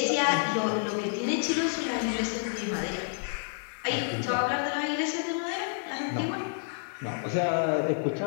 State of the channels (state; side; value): silent; right; digital silence